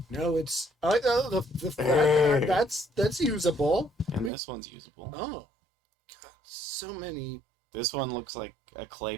No, it's I like that's usable. and this one's usable. Oh, God, so many. This one looks like a clay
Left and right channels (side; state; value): left; drops out; at 4.3 s